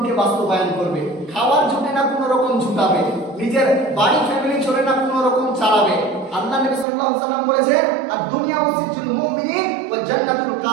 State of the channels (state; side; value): drops out; left; at 6.9 s